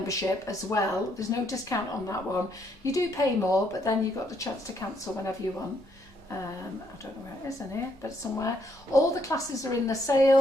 as well. There's no discount on that one. You do pay more, but then you've got the chance to cancel whenever you want. I don't know where it is in here, but somewhere. All the classes are in the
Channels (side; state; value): both; normal; correlation 0.73